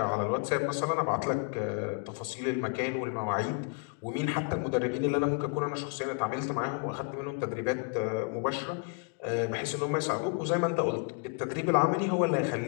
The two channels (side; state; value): right; quieter; 39.1 dB